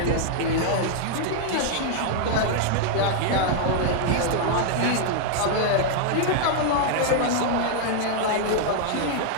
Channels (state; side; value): different; both; correlation -0.01